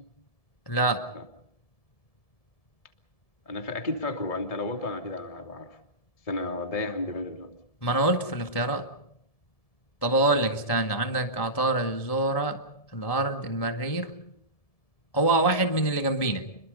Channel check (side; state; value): right; late; 1.7 ms